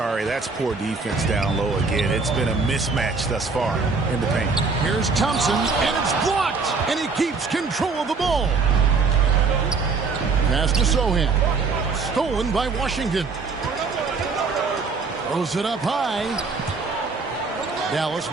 that's poor defense down low again. It's been a mismatch thus far in the paint. Here's Thompson, and it's blocked, and he keeps control of the ball. Pass to Sohan. Stolen by Washington. Throws it up high. Dallas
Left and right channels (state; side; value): quieter; left; 4.5 dB